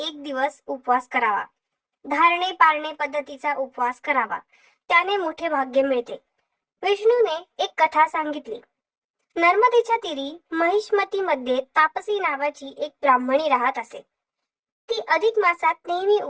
दिवस उपवास करावा. धारणे पारणे पद्धतीचा उपवास करावा, त्याने मोठे भाग्य मिळते. विष्णूने एक कथा सांगितली. नर्मदेच्या तीरी महिष्मती मध्ये तापसी नावाची एक ब्राह्मणी राहत असे. ती अधिक मासात नेहमी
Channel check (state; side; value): identical; both; correlation 1.00